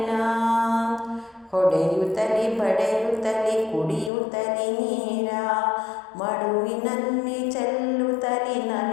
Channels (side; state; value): right; drops out; at 4.1 s